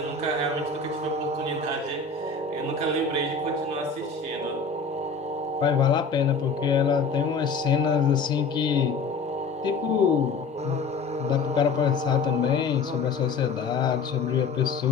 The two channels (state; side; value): quieter; right; 4.7 dB